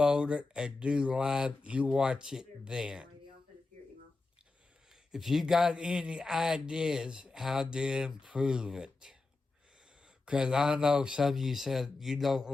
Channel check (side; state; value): right; quieter; 3.5 dB